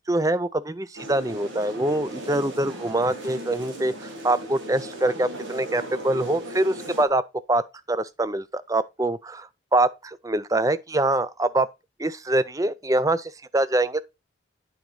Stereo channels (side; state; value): both; normal; correlation 0.60